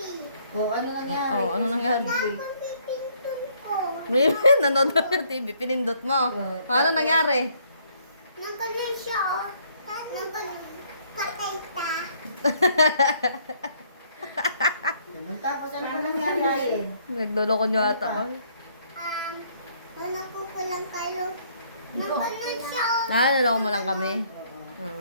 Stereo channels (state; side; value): inverted; both; correlation -0.65